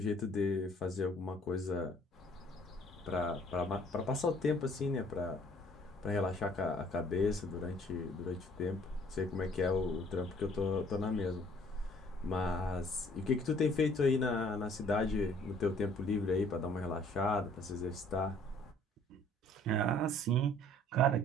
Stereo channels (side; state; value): both; normal; correlation 0.58